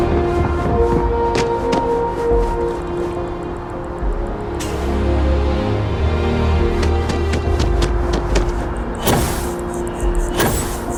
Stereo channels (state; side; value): identical; both; correlation 1.00